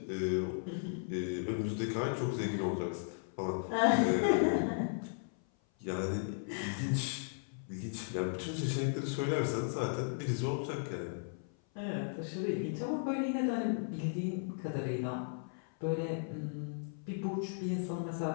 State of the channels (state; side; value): silent; right; 54 dB below the other